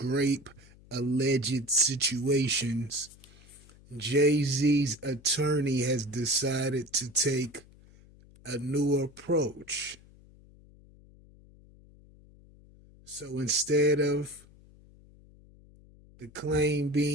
alleged situations, Jay-Z's attorney has decided to take a new approach. So instead of the claim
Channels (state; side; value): noise; left; hum, 25 dB below the sound